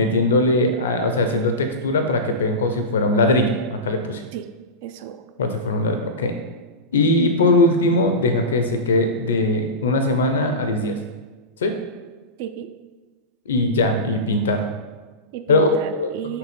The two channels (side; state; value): both; normal; correlation -0.19